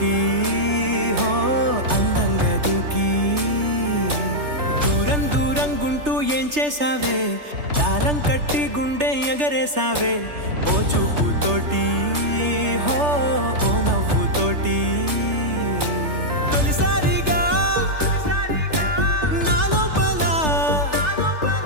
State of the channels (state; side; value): late; left; 3.3 ms